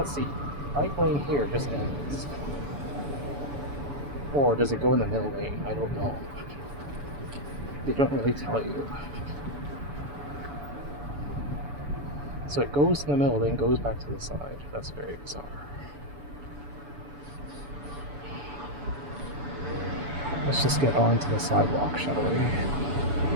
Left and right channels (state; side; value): late; left; 7.0 ms